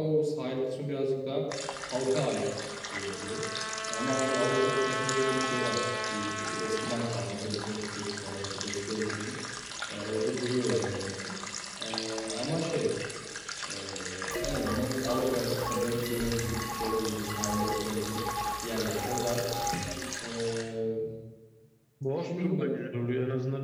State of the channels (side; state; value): both; identical; correlation 1.00